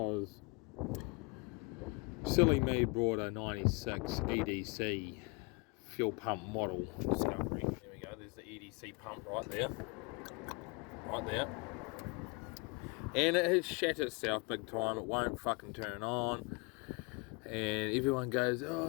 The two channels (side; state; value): right; quieter; 30.6 dB